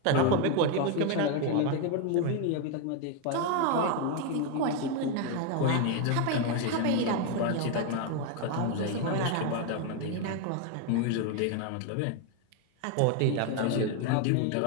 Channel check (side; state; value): both; different; correlation 0.01